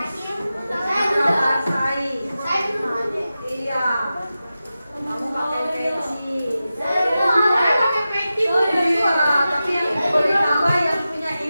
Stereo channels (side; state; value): both; inverted; correlation -0.93